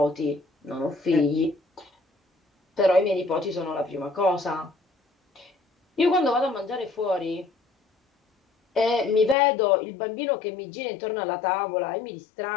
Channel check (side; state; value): right; drops out; at 9.3 s